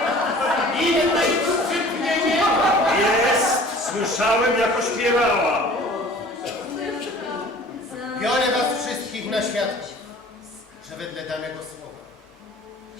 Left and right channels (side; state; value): both; normal; correlation 0.47